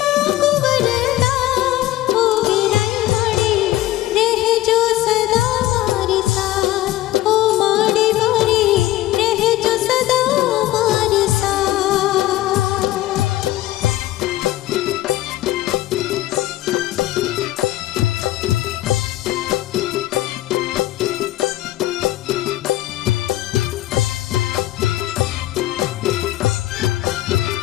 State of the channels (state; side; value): quieter; right; 15.4 dB